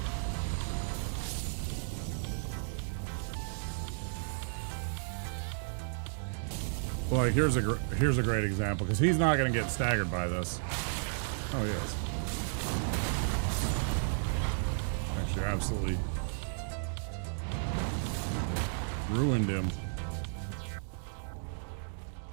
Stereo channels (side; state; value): left; silent; digital silence